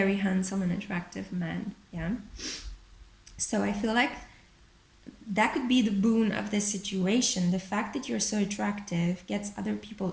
handsome and attractive men. Yeah. So I feel like that could be the boon of this situation. The fact that you're so attractive gets other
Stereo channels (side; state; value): both; identical; correlation 1.00